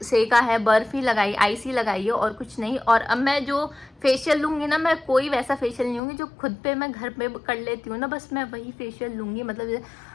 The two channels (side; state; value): right; drops out; at 6.0 s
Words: है, बर्फ़ ही लगाई, आइस ही लगाई है, और कुछ नहीं। और अब मैं जो फेशियल लूँगी ना, मैं कोई वैसा फेशियल नहीं लूँगी जो खुद पे मैं घर पे कर लेती हूँ ना, बस मैं वही फेशियल लूँगी। मतलब